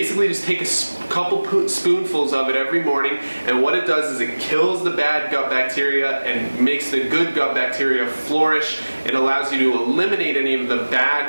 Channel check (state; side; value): inverted; both; correlation -1.00